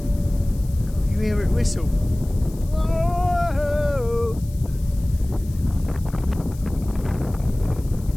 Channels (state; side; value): noise; left; hiss, 22 dB below the sound